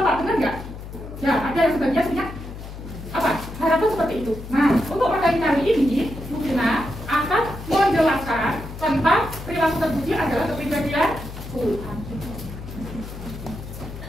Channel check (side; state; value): left; noise; hum, 11 dB below the sound